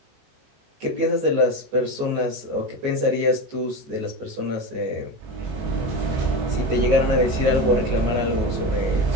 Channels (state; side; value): late; left; 19 ms